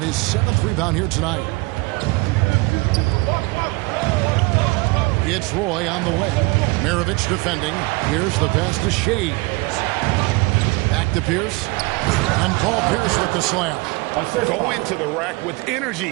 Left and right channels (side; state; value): left; quieter; 24.9 dB